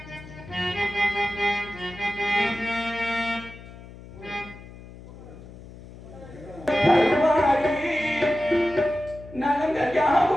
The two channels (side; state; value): left; noise; hum, 17 dB below the sound